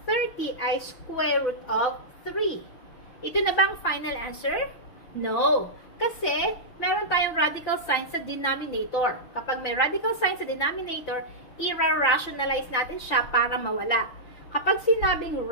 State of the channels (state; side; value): late; right; 5.8 ms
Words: 30 ay square root of 3. Ito na bang final answer? No. Kasi, meron tayong radical sign sa denominator. Kapag may radical sign sa denominator, i-rationalize natin siya para mawala. Kapag sinabing